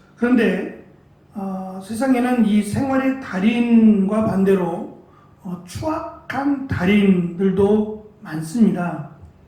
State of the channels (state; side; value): identical; both; correlation 1.00